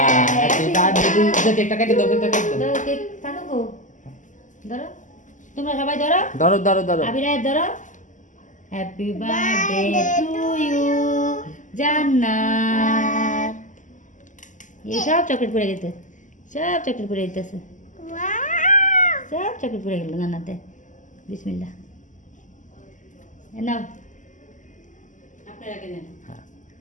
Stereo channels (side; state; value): right; late; 0.37 ms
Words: হ্যাপি বার্থডে টু কেকটা কেটে দাও কেকটা কেটে দাও तो केक थाको को धरो তোমরা সবাই ধরো ধরো ধরো ধরো আবিরায় ধরো হ্যাপি বার্থডে টু ইউ জান্নাত এই সব চকলেট পড়ে গেছে সব চকলেট পড়ে যেতেছে সব চকলেট পড়ে গেল জান্নাতে বিসমিল্লাহ এ নাও আপনারা কেনেন হ্যাঁ